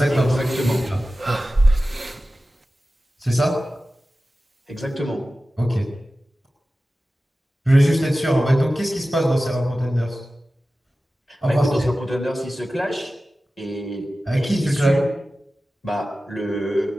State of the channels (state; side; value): normal; both; correlation 0.95